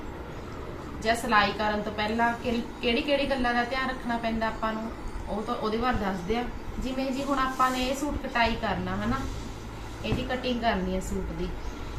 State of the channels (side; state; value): both; identical; correlation 1.00